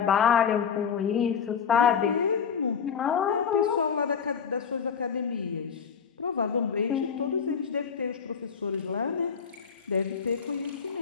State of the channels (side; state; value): right; quieter; 6.8 dB